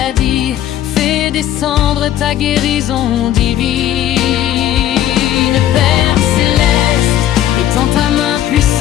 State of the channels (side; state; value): right; quieter; 12.0 dB